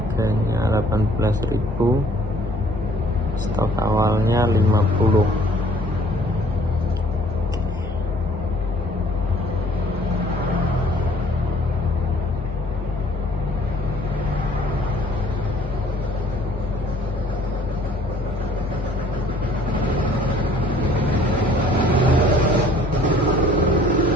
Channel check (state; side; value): normal; both; correlation 0.56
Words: 18.000, stok awalnya 50.